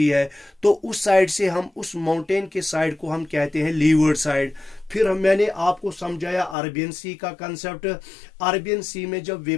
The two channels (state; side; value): drops out; right; at 6.6 s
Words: है, तो उस साइड से हम, उस माउंटेन के साइड को हम कहते हैं लीवर्ड साइड। फिर मैंने आपको समझाया अरेबियन सी का कंसेप्ट। अरेबियन सी में जब